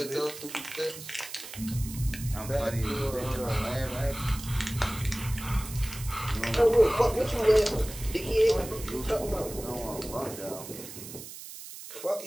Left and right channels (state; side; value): noise; right; hiss, 12 dB below the sound